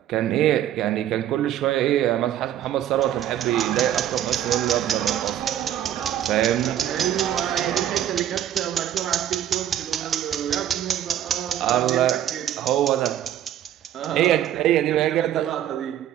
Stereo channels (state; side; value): quieter; left; 11.1 dB